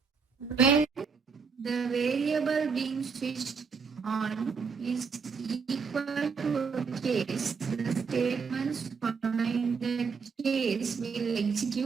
When the variable being switched on is equal to a case, the statements following the case will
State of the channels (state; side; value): quieter; left; 5.5 dB